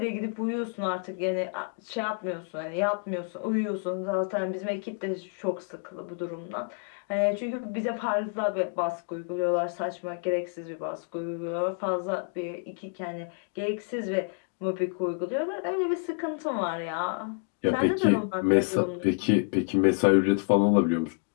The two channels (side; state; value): right; silent; 56 dB below the other